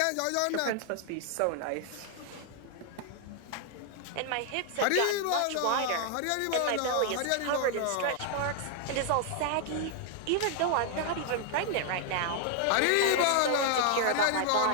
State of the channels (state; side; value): different; both; correlation 0.00